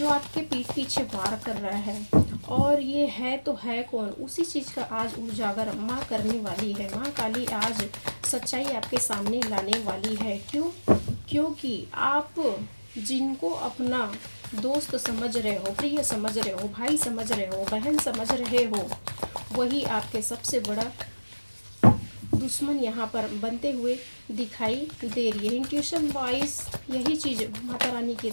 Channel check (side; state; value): both; inverted; correlation -1.00